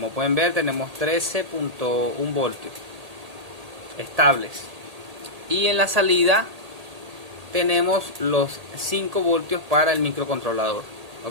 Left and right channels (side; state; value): left; late; 1.8 ms